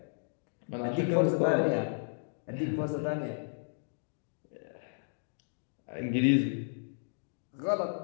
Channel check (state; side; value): silent; right; digital silence